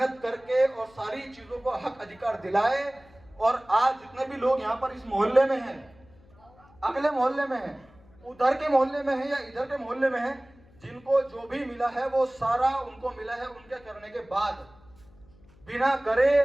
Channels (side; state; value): left; noise; hum, 27 dB below the sound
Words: करके और सारी चीजों को हक अधिकार दिलाए, और आज जितने भी लोग यहाँ पर इस मोहल्ले में हैं, अगले मोहल्ले में हैं, उधर के मोहल्ले में है या इधर के मोहल्ले में है, जिनको जो भी मिला है वो सारा उनको मिला है उनके करने के बाद, बिना करे